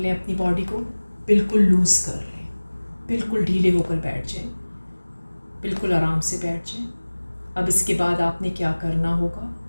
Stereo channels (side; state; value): both; inverted; correlation -1.00